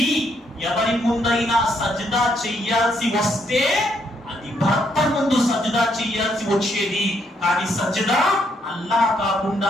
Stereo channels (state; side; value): normal; both; correlation 0.73